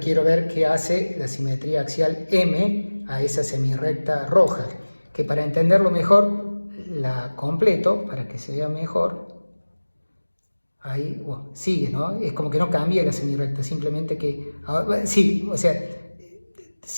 ver qué hace la simetría axial M a esa semirrecta roja, que para entenderlo mejor la completo, para que se vea mejor. Ahí, bueno, sigue, ¿no? Es como que no cambia la semirrecta, simplemente que... Sí, o sea,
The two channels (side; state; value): both; inverted; correlation -1.00